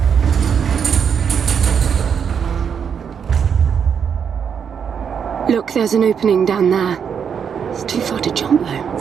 Look, there's an opening down there. It's too far to jump, though.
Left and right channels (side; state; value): left; quieter; 7.2 dB